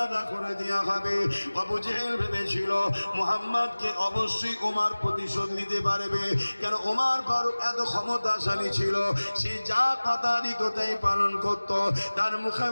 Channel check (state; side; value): inverted; both; correlation -1.00